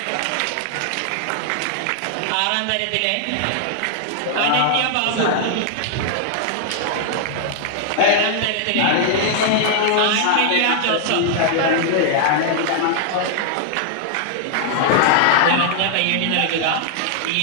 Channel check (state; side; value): different; both; correlation 0.00